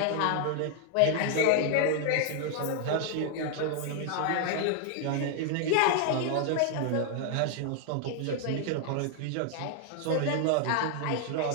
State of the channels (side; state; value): both; different; correlation 0.00